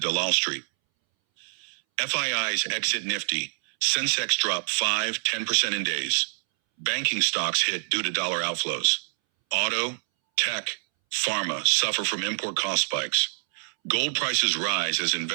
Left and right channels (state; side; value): silent; left; 61 dB below the other